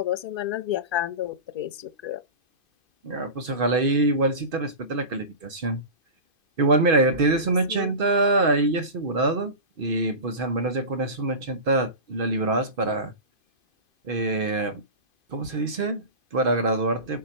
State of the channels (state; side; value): late; left; 2.5 ms